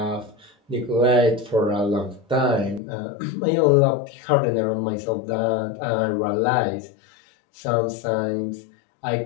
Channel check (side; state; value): right; drops out; at 2.8 s